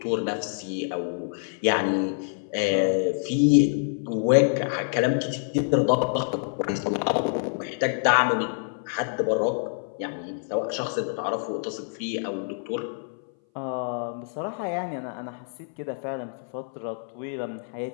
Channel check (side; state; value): right; silent; 59 dB below the other